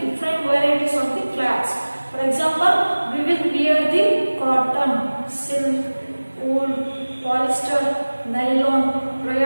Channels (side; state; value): both; inverted; correlation -1.00